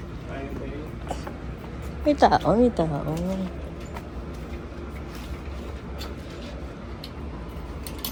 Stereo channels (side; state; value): both; identical; correlation 1.00